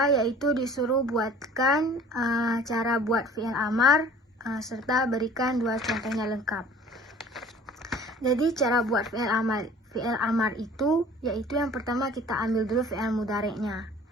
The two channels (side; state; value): both; normal; correlation 0.47